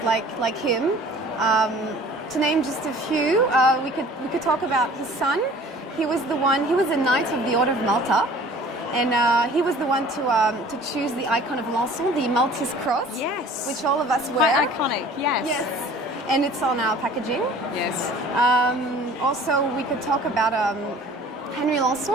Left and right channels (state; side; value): normal; both; correlation 0.48